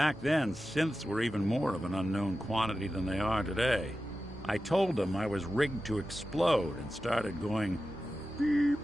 then, synths were even more of an unknown quantity than they are today. I told them I was rigged to explode and started going beep,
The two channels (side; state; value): both; normal; correlation 0.93